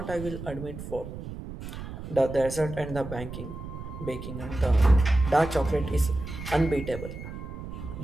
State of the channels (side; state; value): right; noise; rumble, 10 dB below the sound